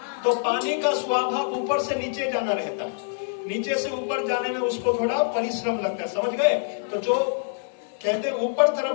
तो पानी का स्वभाव ऊपर से नीचे जाना रहता है, नीचे से ऊपर जाने में उसको थोड़ा परिश्रम लगता है, समझ गए। तो जो कहते हैं ऊपर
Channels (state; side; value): silent; right; digital silence